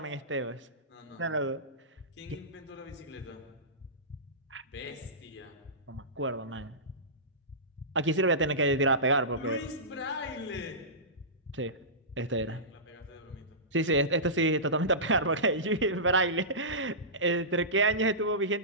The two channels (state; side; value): normal; both; correlation -0.20